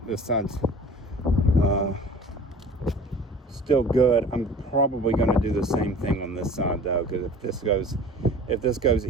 This side's still good. I'm probably going to do the same thing on this side though, because if this goes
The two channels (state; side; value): normal; both; correlation 0.44